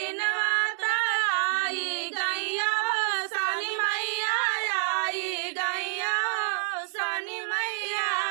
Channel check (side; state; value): left; silent; 58 dB below the other